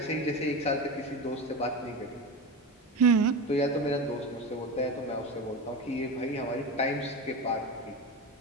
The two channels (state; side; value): normal; both; correlation 0.24